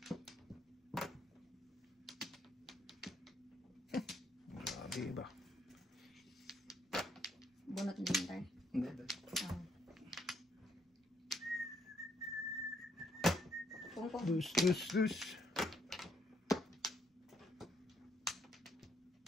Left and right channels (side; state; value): both; normal; correlation 0.71